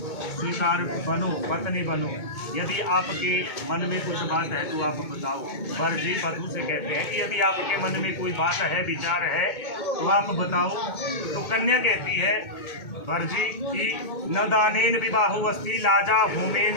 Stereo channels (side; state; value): right; late; 2.2 ms